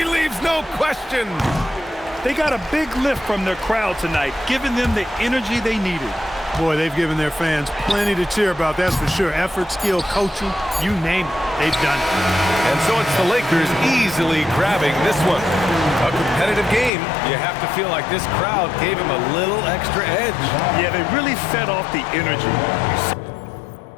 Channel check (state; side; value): drops out; right; at 16.9 s